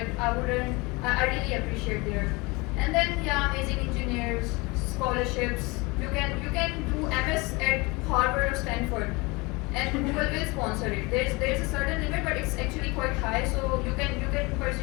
I really appreciate there. And then yeah, amazing engineers, scholarships. You can do MS at Harvard or Stanford. And Google will sponsor it. There's a certain limit, but it's actually quite high. So you can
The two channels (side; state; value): right; quieter; 25.5 dB